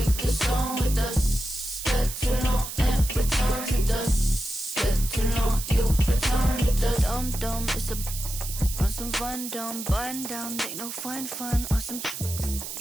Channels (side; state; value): right; noise; hiss, 8 dB below the sound